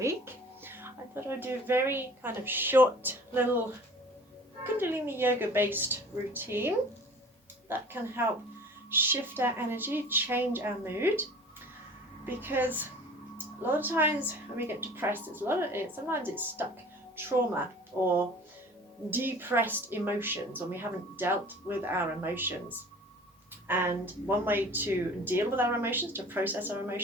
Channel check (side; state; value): both; normal; correlation 0.45